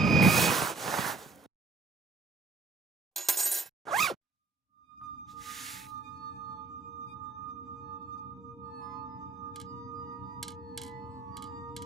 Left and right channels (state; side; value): quieter; left; 3.7 dB